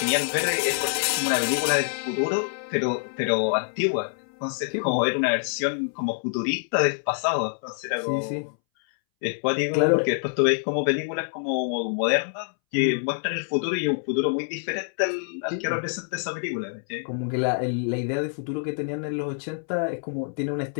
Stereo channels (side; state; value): right; silent; 61 dB below the other